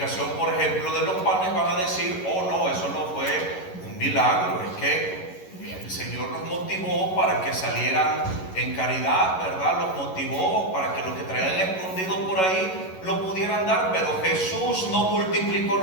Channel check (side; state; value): right; late; 11 ms